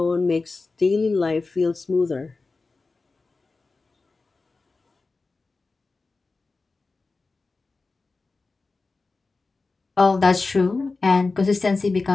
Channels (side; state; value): right; quieter; 3.8 dB